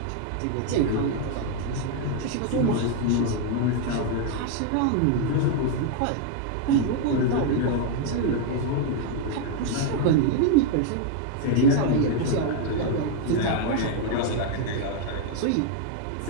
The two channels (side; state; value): both; different; correlation 0.00